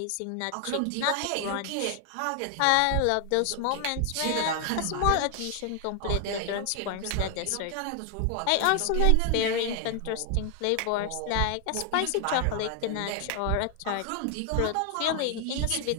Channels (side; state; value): both; different; correlation 0.00